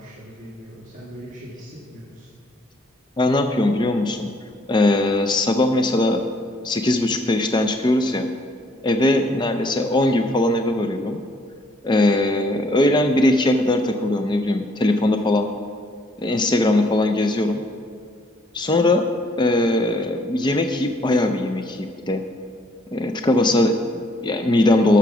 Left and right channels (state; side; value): normal; both; correlation 0.65